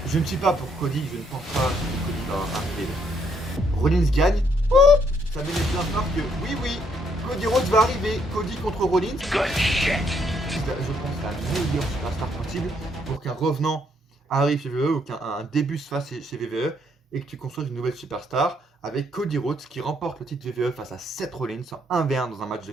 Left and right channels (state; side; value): normal; both; correlation 0.71